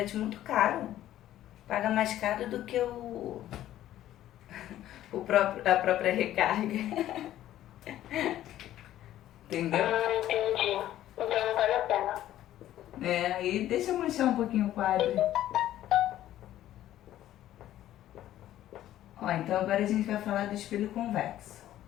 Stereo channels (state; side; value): quieter; right; 13.0 dB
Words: muito caro. Paga mais caro do que a própria recarga. Entendeu? Entendi. Então não vale a pena. Aí deixa eu manchar um pouquinho o quadro. Ó, então agora a gente vai falar do espelho convexo,